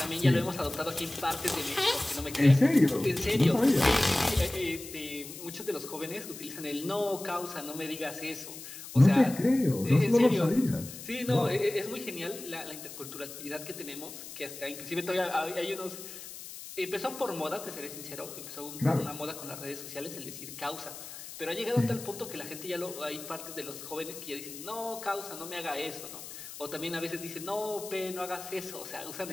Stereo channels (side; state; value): left; noise; hiss, 12 dB below the sound